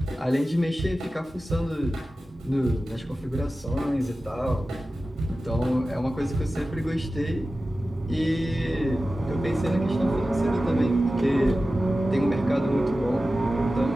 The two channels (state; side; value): normal; both; correlation 0.95